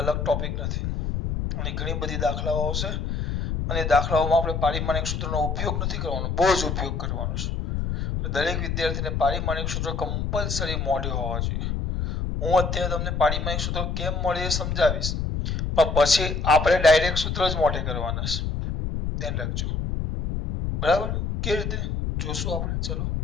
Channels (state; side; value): noise; left; rumble, 2 dB below the sound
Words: અલગ ટોપિક નથી અને ઘણી બધી દાખલાઓ આવશે અને દાખલાઓમાં આપણે પારિમાણિક સૂત્રનો ઉપયોગ નથી કરવાનો, બહુ જ ઉપયોગ કરવાનો છે. દરેક વિદ્યાર્થીને પારિમાણિક સૂત્ર કમ્પલસરી મોઢે હોવા જોઈએ. હું અત્યારે તમને પારિમાણિક સૂત્ર કેમ મળે એ સમજાવીશ, પણ પછી આપણે ડાયરેક્ટ સૂત્ર જ મોઢે કરવાના છે. ધ્યાન રાખજો, બરાબર? કેવી રીતે જોશું આપણે? ચલો